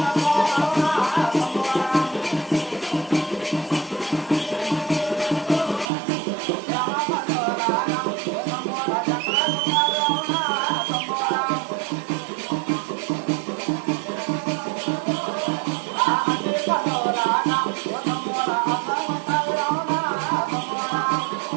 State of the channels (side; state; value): left; drops out; at 5.9 s